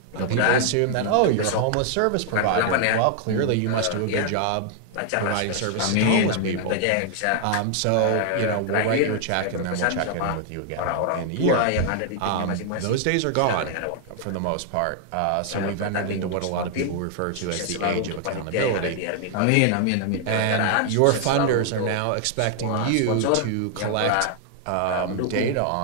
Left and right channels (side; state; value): both; different; correlation 0.00